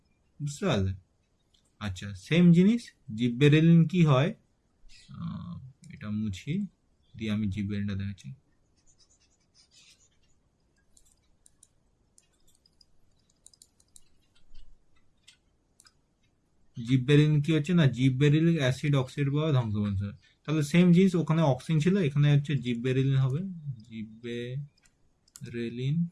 বুঝতে পারলে? আচ্ছা, সেম জিনিস জিববেরেলিন কি হয়, এটা মুছি দিয়ে আমি জিববেরেলিনটা দেখাচ্ছি। জিববেরিলিন কি হচ্ছে না, জিববেরিলিক অ্যাসিড অক্সাইড বা ধ্বংস করছে। তাহলে সেম জিনিস, ওখানে অক্সিন ছিল, এখানে হচ্ছে জিববেরিলিন হবে, জিববেরিলিন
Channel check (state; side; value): identical; both; correlation 1.00